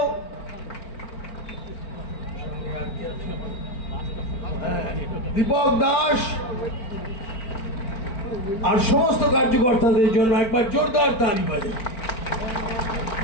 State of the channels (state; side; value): late; right; 4.4 ms